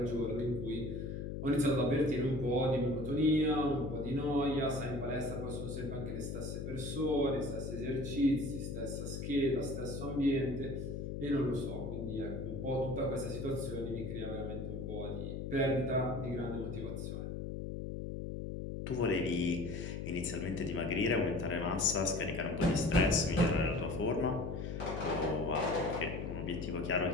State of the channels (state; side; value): noise; left; hum, 5 dB below the sound